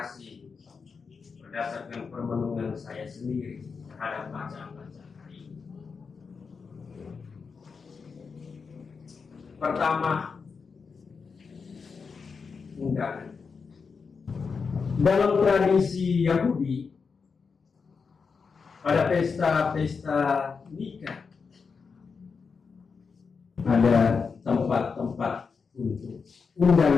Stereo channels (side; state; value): right; quieter; 5.3 dB